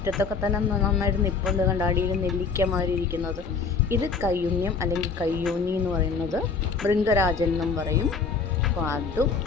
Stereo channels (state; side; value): quieter; right; 5.0 dB